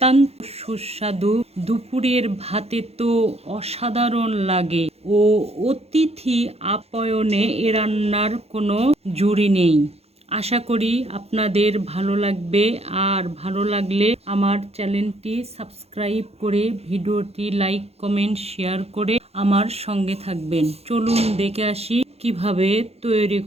সুস্বাদু। দুপুরের ভাতে তো অসাধারণ লাগে ও অতিথি আপ্যায়নে এ রান্নার কোনো জুড়ি নেই। আশা করি আপনাদের ভালো লাগবে, আর ভালো লাগলে আমার চ্যানেলটি সাবস্ক্রাইব করে ভিডিওটি লাইক, কমেন্ট, শেয়ার করে আমার সঙ্গে থাকবেন। চলুন দেখে আসি কিভাবে তৈরি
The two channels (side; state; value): left; late; 0.30 ms